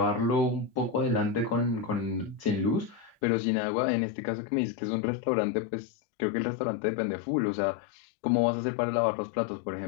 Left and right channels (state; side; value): drops out; right; at 3.2 s